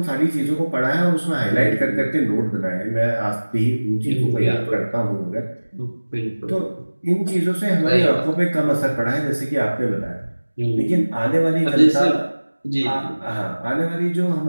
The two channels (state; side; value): inverted; both; correlation -1.00